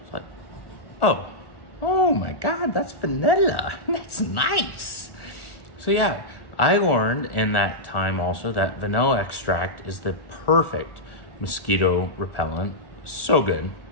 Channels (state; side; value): late; right; 1.1 ms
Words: It's like, oh my God, that's vanilla. That's nice. So yeah, I learned in that time also that vanilla extract is the perfect mosquito repellent. So good,